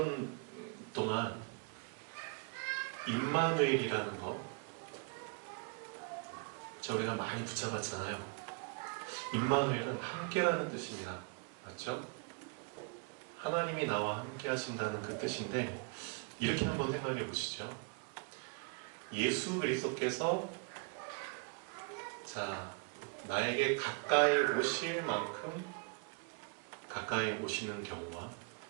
동안 임마누엘이라는 거 저희가 많이 붙잡았잖아요. 임마누엘은 함께라는 뜻입니다. 맞죠? 하나님이 나와 함께 하신다는 그 뜻인데, 이렇게 한번 생각해 보시죠. 예수 그리스도께서 나에게 가까이 오실 만큼 가까이 오시는 경우와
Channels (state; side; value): quieter; left; 37.3 dB